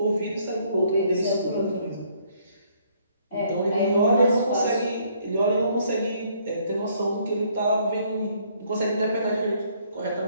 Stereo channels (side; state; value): both; inverted; correlation -0.66